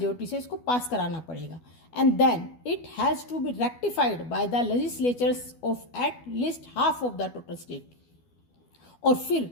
से इसको पास कराना पड़ेगा। And then it has to be rectified by the legislatures of at least half of the total state. और फिर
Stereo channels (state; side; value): late; right; 12 ms